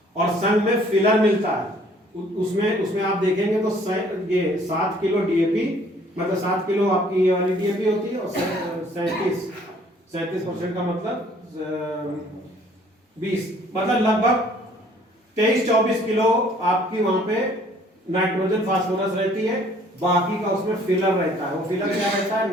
और संग में फिलर मिलता है। उसमें आप देखेंगे तो ये 7 किलो डीएपी, मतलब 7 किलो आपकी ये वाली डीएपी होती है, और 37% का मतलब 20, मतलब लगभग 23-24 किलो आपकी वहां पे नाइट्रोजन फास्फोरस रहती है। बाकी का उसमें फिलर रहता है। वो फिलर क्या रहता है?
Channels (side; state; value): both; normal; correlation 0.58